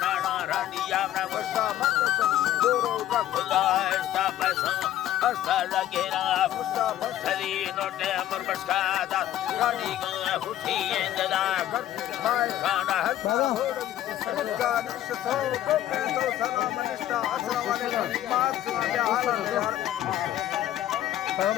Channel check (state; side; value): quieter; right; 12.6 dB